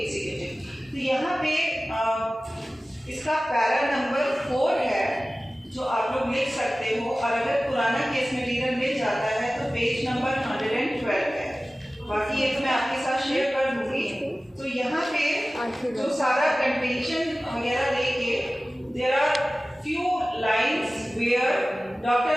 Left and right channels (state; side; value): normal; both; correlation 0.97